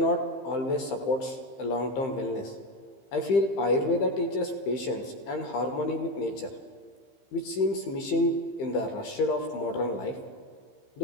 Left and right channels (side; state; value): right; late; 15 ms